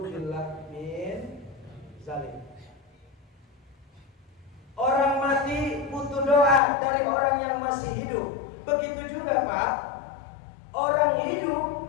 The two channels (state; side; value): drops out; right; at 6.6 s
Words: min zalim. Orang mati butuh doa dari orang yang masih hidup. Begitu juga Pak, orang hidup